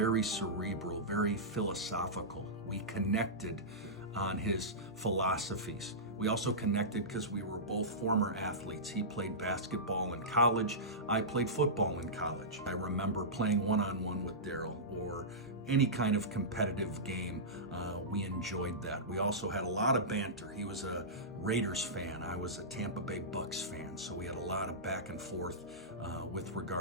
cerebral, very philosophical. We connected on his philosophies. We also connected because we were both former athletes. He played basketball in college. I played football in college. I remember playing one-on-one with Darryl or any kind of competitive game. We enjoyed that. We also had a lot of banter. He was a Raiders fan. I was a Tampa Bay Bucks fan. So we had a lot of back and forth with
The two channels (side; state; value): both; normal; correlation -0.17